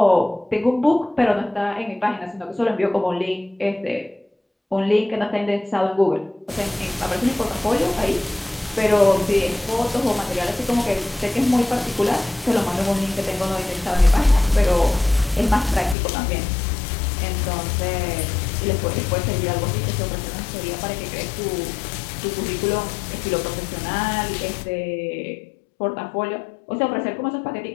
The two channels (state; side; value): drops out; right; at 16.0 s